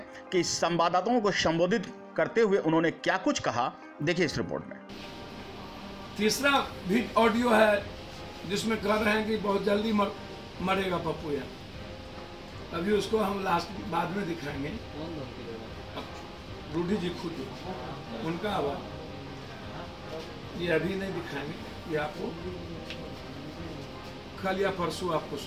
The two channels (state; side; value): identical; both; correlation 1.00